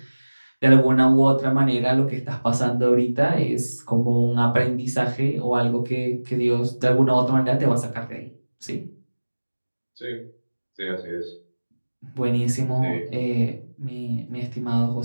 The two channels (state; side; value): inverted; both; correlation -1.00